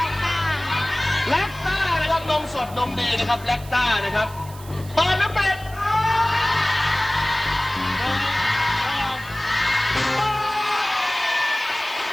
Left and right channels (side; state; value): right; noise; hiss, 19 dB below the sound